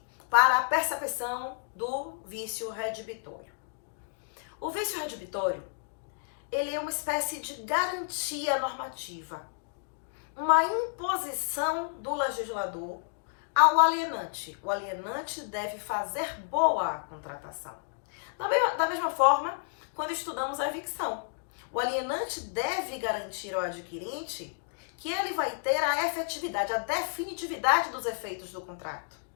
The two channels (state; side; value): silent; right; digital silence